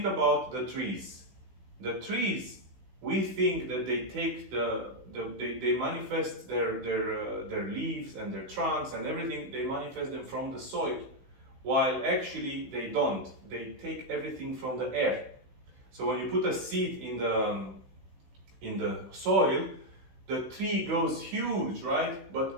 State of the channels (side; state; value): left; late; 16 ms